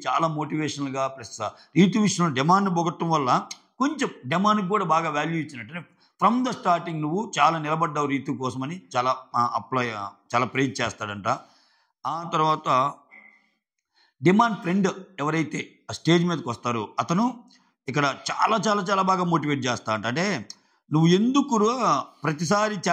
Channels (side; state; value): both; identical; correlation 1.00